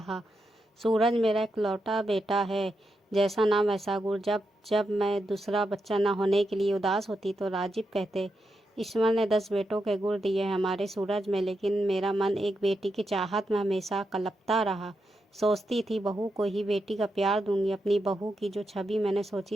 सूरज मेरा इकलौता बेटा है, जैसा नाम वैसा गुण। जब जब मैं दूसरा बच्चा न होने के लिए उदास होती तो राजीव कहते, ईश्वर ने 10 बेटों के गुण दिए हैं हमारे सूरज में, लेकिन मेरा मन एक बेटी की चाहत में हमेशा कलपता रहा। सोचती थी बहू को ही बेटी का प्यार दूंगी। अपनी बहू की जो छवि मैंने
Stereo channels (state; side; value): normal; both; correlation 0.85